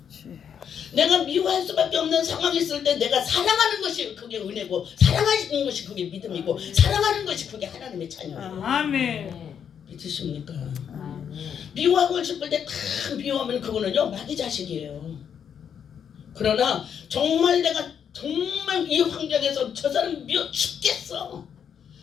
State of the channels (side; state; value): right; quieter; 8.0 dB